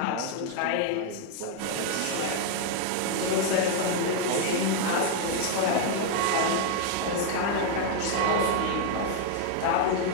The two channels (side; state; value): both; different; correlation 0.00